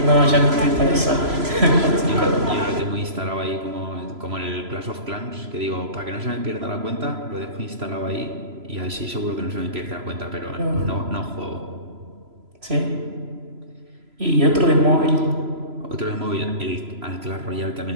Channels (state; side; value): late; left; 3.0 ms